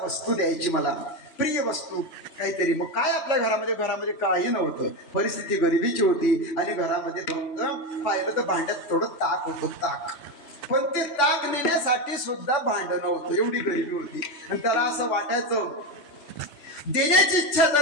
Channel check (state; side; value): late; right; 3.5 ms